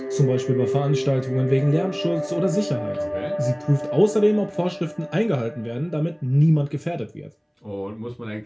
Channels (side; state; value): both; identical; correlation 1.00